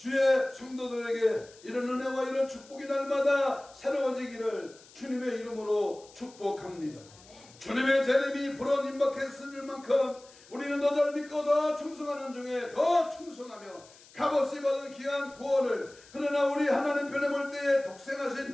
성도들에게 이런 은혜와 이런 축복이 날마다 새로워지기를 주님의 이름으로 축복합니다. 주님의 재림이 불어 임박했을 만큼 우리는 더 잘 믿고 더 충성하는 중에 더 충성하며 값없이 받은 귀한 구원을, 그러나 우리 하나님 편에 볼 때에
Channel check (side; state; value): left; noise; hiss, 24 dB below the sound